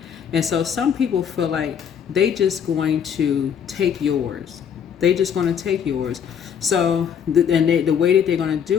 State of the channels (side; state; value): right; quieter; 7.9 dB